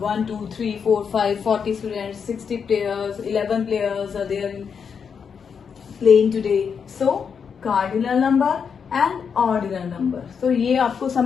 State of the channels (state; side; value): quieter; right; 6.6 dB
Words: 2, 3, 4, 5, 40 students, 60 players, 11 players are there playing today. So cardinal number and ordinal number. So ये आपको